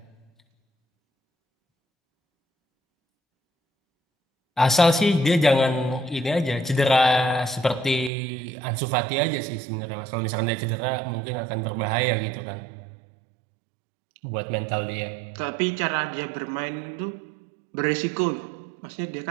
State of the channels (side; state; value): left; drops out; at 8.1 s